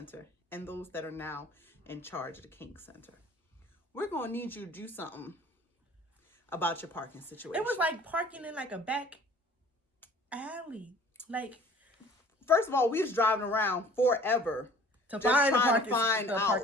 and those that are now in charge of the King Center, we're going to need you to do something about your parking situation. It was like parking in like a back alley. Like, first of all, we was driving around forever to find the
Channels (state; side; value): normal; both; correlation 0.50